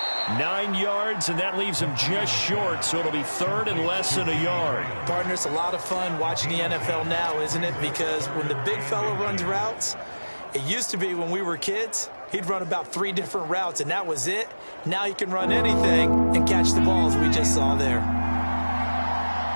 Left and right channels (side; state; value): both; inverted; correlation -1.00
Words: 9 yards, and that leaves him just short, so it'll be 3rd and less than a yard. Partner, it's a lot of fun watching the NFL now, isn't it? Because when the big fella runs routes, it used to be when we were kids, he'd run about 3 different routes, and that was it. Now he can run anything and catch the balls we just saw there.